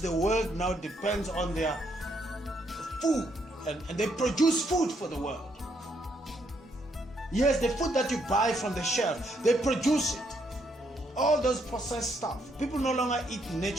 the world now depends on their food. And they produce food for the world. Yes, the food that you buy from the shelf, they produce it. All those processed stuff. People no longer eat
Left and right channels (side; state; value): both; normal; correlation 0.74